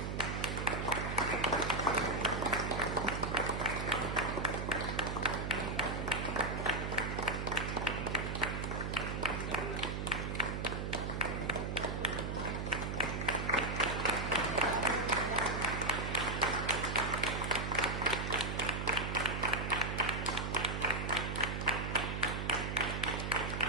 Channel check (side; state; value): right; noise; hum, 2 dB below the sound